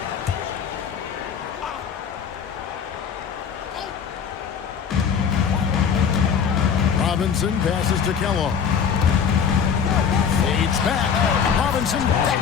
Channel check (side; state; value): right; quieter; 7.1 dB